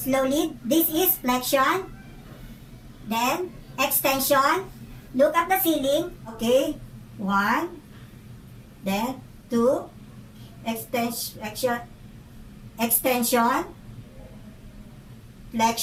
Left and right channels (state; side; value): identical; both; correlation 1.00